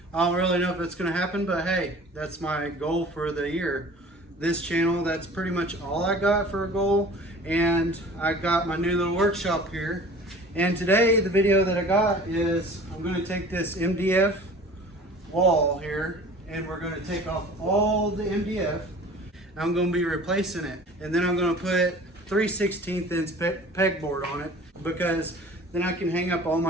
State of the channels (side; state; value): both; normal; correlation 0.44